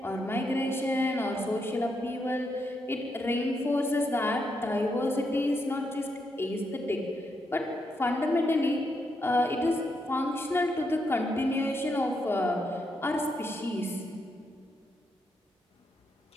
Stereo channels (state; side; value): normal; both; correlation 0.80